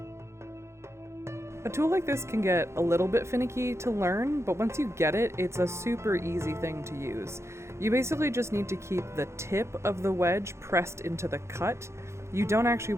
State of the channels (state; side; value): late; left; 0.13 ms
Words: A tool like this can get a little bit finicky to learn, but once you get it, it's a super easy thing to use. You basically just need to keep the tip of the wedge pressed into the cut. You don't actually